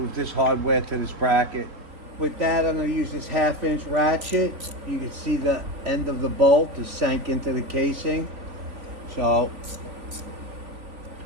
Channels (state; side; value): late; left; 3.6 ms